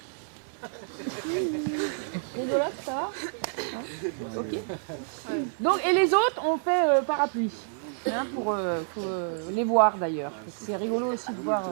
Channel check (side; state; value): left; silent; digital silence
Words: Rigolote, ça va? Ok. Donc, et les autres, on fait parapluie. Hein, pour les voir d'ailleurs. C'est rigolo aussi de voir.